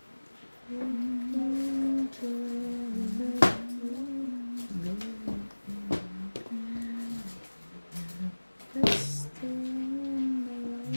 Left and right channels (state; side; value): inverted; both; correlation -1.00